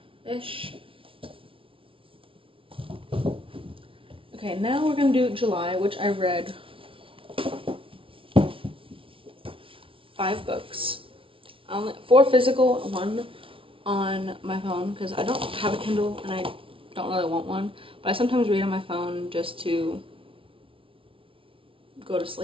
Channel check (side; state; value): left; late; 0.25 ms